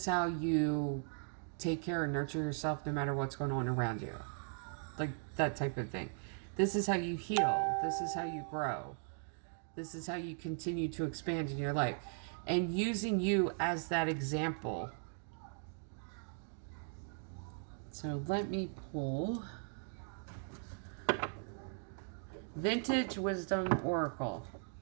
how you take care and nurture yourself no matter what's going on around you. Like that type of thing. This is how you heal. This is how you grow. This is how you continue to expand in your life. And using you as that example. So let me pull Vintage Wisdom Oracle.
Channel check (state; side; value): silent; left; 52 dB below the other